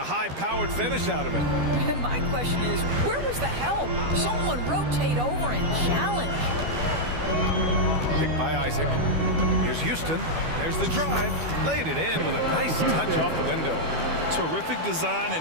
high-powered finish out of it. And my question is, where was the help? Someone rotate over and challenge. Picked by Isaac. Here's Houston. There's the drive. Laid it in with a nice touch off the window. Terrific design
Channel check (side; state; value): left; late; 12 ms